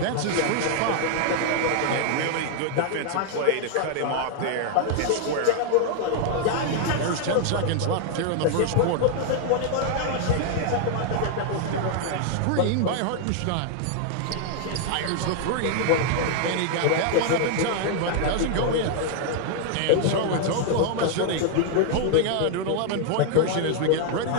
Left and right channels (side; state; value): both; different; correlation 0.00